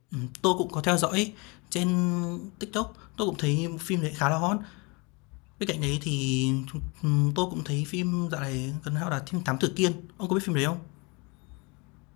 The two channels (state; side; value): quieter; right; 29.0 dB